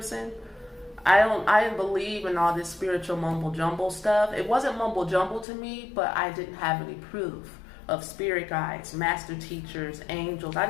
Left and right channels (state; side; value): drops out; right; at 5.5 s